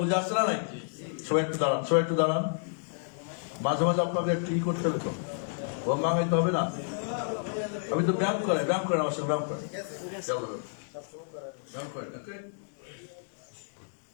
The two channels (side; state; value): right; silent; digital silence